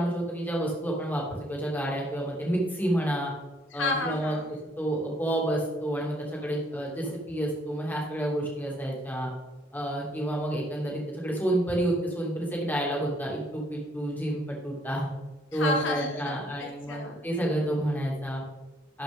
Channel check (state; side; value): normal; both; correlation 0.66